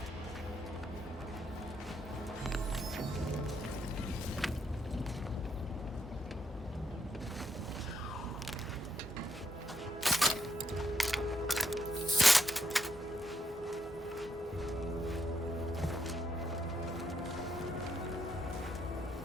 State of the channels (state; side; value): normal; both; correlation 0.78